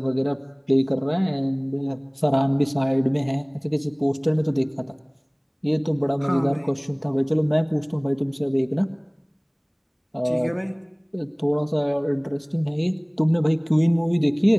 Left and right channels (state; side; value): identical; both; correlation 1.00